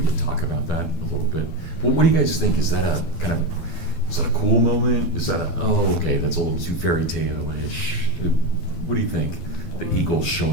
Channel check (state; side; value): late; right; 12 ms